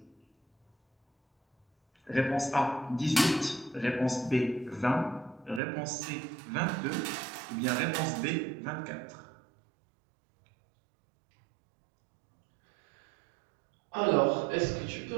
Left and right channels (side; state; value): left; drops out; at 5.6 s